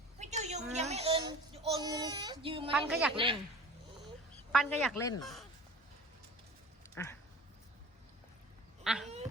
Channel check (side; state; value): both; normal; correlation 0.40